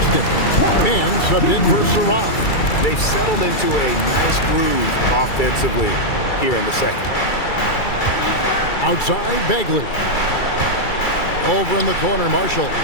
Man subbed in for Saraf. They've settled into a nice groove offensively here in the second. Outside, Bagley. Over in the corner, Marshall.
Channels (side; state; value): right; late; 2.3 ms